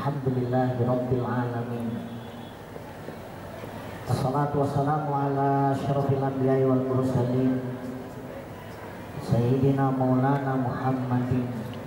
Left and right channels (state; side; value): identical; both; correlation 1.00